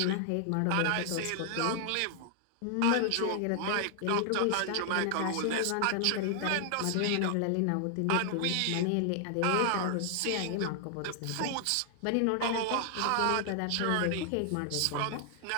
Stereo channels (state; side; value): different; both; correlation 0.00